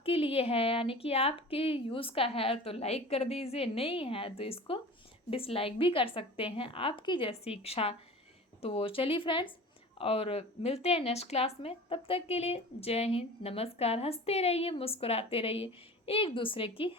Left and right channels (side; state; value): both; normal; correlation 0.38